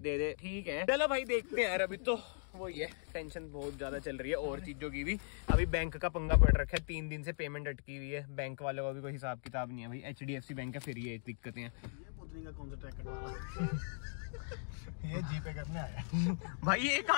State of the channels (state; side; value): silent; right; digital silence